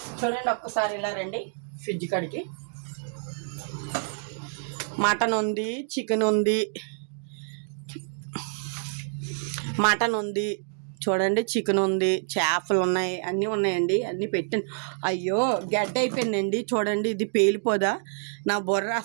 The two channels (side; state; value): left; silent; digital silence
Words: చూడండి ఒక్కసారి ఇలా రండి, ఫ్రిడ్జ్ కాడికి మటన్ ఉంది, చికెన్ ఉంది, మటన్ ఉంది, చూడండి చికెన్ ఉంది, చేపలు ఉన్నాయి, అన్నీ ఉన్నాయండి. అన్నీ పెట్టాను. అయ్యో గడ్డ అయిపోయిందండి, చూడండి ఇది పేలిపోదా, నా బుర్ర